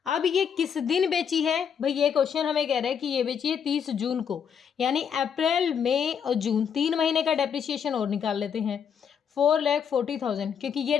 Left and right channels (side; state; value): right; quieter; 7.5 dB